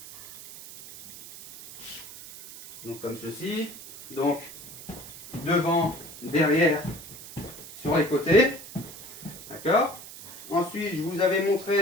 Donc comme ceci. Donc devant, derrière, sur les côtés. D'accord? Ensuite, je vous avais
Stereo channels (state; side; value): noise; right; hiss, 15 dB below the sound